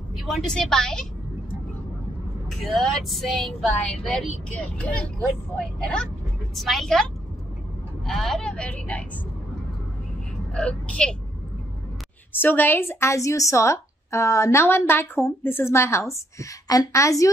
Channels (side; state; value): both; normal; correlation 0.72